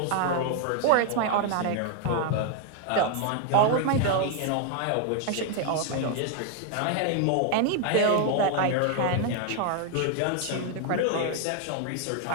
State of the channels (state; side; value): different; both; correlation 0.00